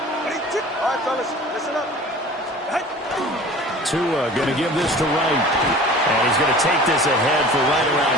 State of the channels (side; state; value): both; normal; correlation 0.42